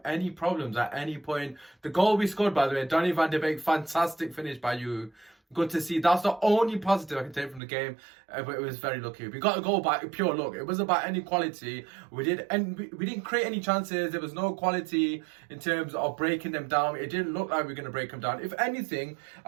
any problems at any point. The goal we scored, by the way, Donny van de Beek, fantastic finish by you. Good to see. That's the only positive I can take from the game, but it was very lucky. We got a goal by pure luck. It wasn't about any quality. We didn't create any chances. There was no quality in terms of breaking them down. It didn't look like we were going to break them down. If anything,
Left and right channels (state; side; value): drops out; left; at 7.6 s